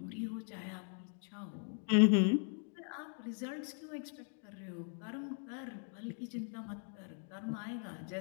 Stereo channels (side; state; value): right; silent; 52 dB below the other